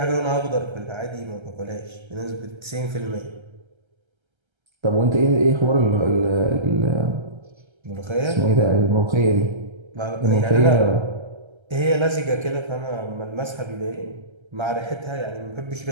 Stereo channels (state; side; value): late; left; 1.3 ms